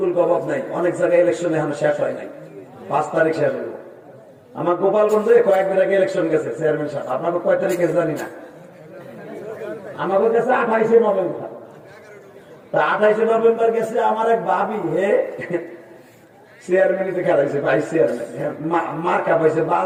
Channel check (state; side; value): identical; both; correlation 1.00